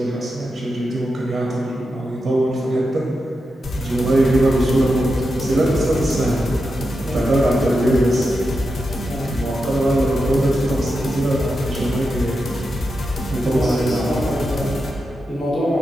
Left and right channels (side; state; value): both; normal; correlation 0.88